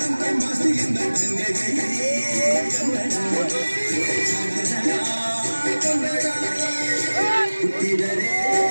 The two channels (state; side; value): inverted; both; correlation -1.00